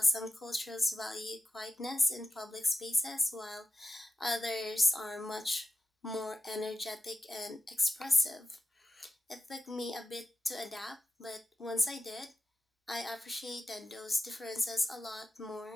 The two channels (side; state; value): both; normal; correlation 0.90